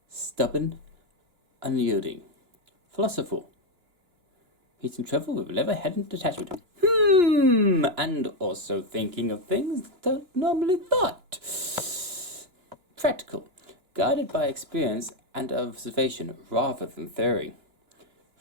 stubborn, unyielding. Philosophical, meeting trouble with level-headed detachment. And also thinking of things that don't normally thought. Practical, guided by experience and observation rather than theory.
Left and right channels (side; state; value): left; late; 2.9 ms